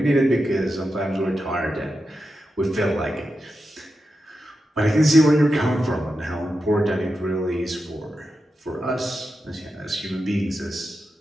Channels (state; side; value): normal; both; correlation 0.89